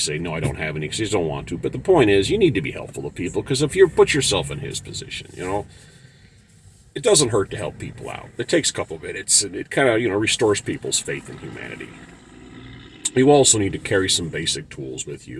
no, I don't have any because you just don't want to. But the point is, you need to be helpful to people because if you put yourself in his position, it doesn't hurt to help people out. It takes a couple of minutes and it kind of, restores people's faith in humanity. You also need to carry some basic tools with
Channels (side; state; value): both; identical; correlation 1.00